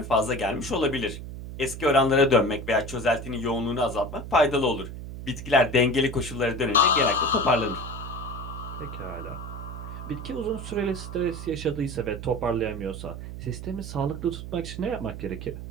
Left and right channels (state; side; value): noise; right; hum, 9 dB below the sound